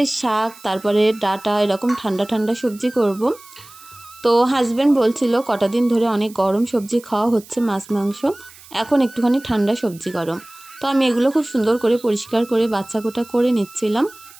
শাক, তারপরে ডাঁটা, এরকম ঠান্ডা ঠান্ডা সবজি করব। তো হাজব্যান্ড বলছিল কটা দিন ধরে অনেক গরম সবজি খাওয়া হচ্ছে, মাছ মাংস, এখন একটুখানি ঠান্ডা সবজি গরম। তো আমি এগুলো খুব সুন্দর করে পরিষ্কার করে বাচ্চা কোটা করে নিচ্ছিলাম।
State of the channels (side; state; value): right; noise; hiss, 21 dB below the sound